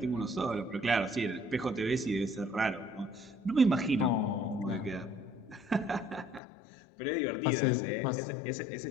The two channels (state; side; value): drops out; right; at 6.4 s